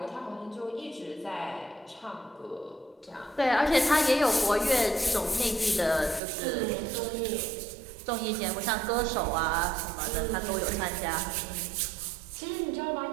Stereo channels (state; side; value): drops out; left; at 6.2 s